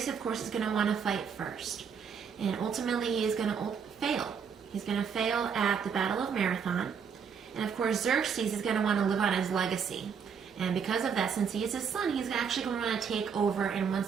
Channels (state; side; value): quieter; left; 6.7 dB